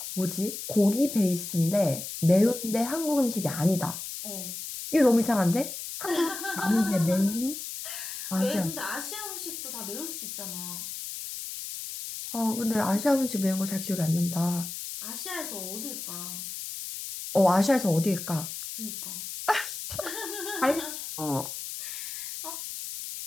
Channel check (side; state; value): left; noise; hiss, 7 dB below the sound